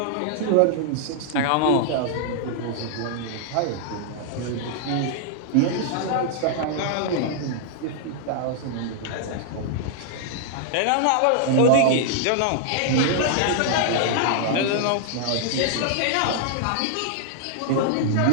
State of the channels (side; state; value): both; different; correlation -0.01